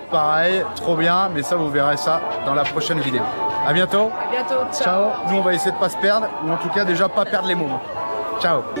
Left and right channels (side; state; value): both; inverted; correlation -1.00